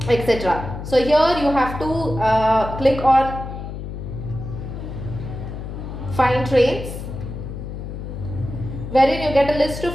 etc. So here you have to click on find trains, wherein you get a list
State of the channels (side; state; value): left; noise; hum, 8 dB below the sound